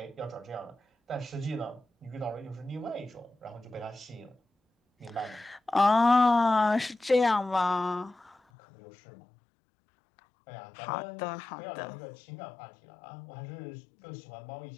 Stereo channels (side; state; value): right; drops out; at 8.3 s